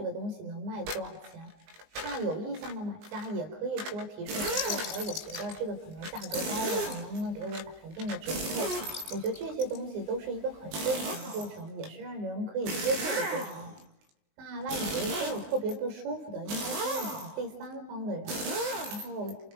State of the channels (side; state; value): left; late; 19 ms